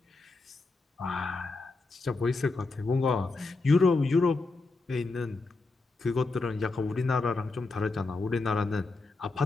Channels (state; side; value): quieter; right; 3.6 dB